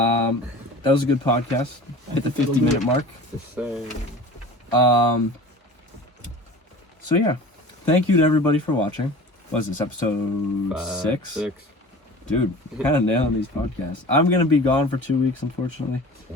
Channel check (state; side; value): normal; both; correlation 0.39